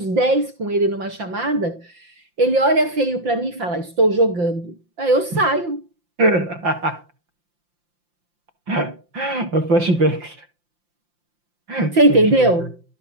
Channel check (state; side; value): late; left; 5.8 ms